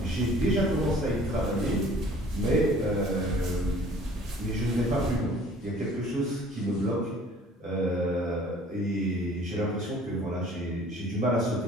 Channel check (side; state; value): both; normal; correlation 0.52